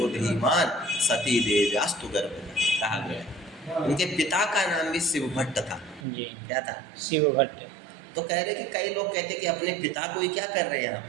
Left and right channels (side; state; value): left; drops out; at 6.1 s